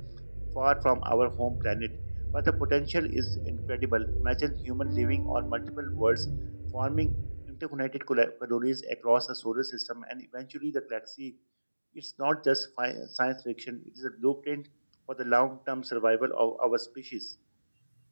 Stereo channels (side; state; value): both; inverted; correlation -1.00